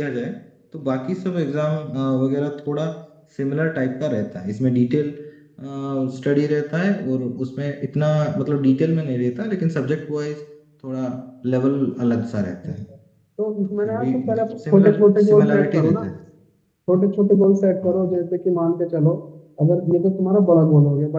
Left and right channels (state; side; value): identical; both; correlation 1.00